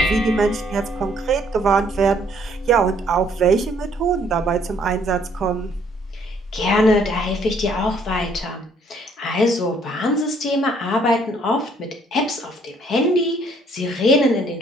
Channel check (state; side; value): normal; both; correlation 0.64